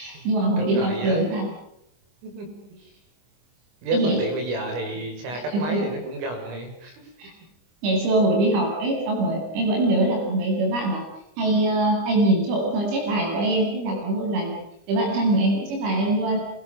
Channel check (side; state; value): left; late; 25 ms